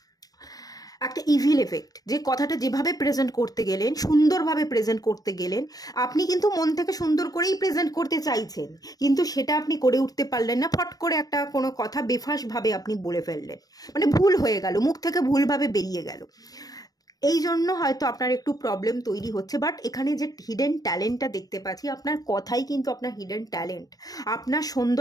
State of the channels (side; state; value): right; late; 0.18 ms